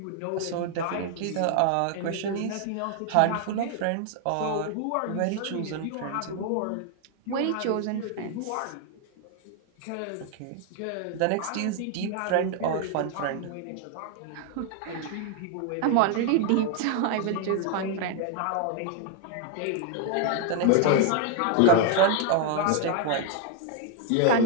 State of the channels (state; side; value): different; both; correlation 0.00